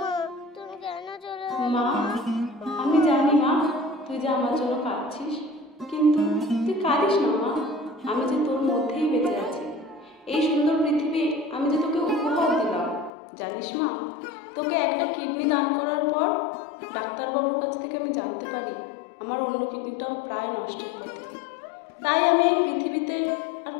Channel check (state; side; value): drops out; right; at 13.1 s